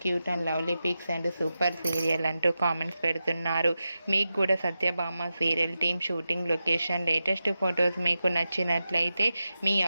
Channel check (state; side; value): inverted; both; correlation -0.92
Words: cute and lovely pics and super serial అంటూ కామెంట్స్ పెడుతున్నారు. మీకు కూడా Satyabhama serial team shooting location latest photos మీకు నచ్చినట్లయితే మీ